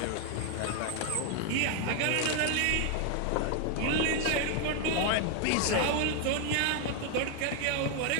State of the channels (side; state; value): both; different; correlation 0.01